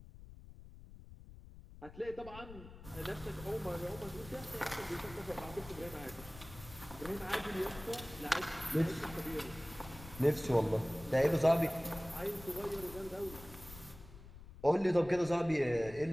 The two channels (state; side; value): noise; left; rumble, 16 dB below the sound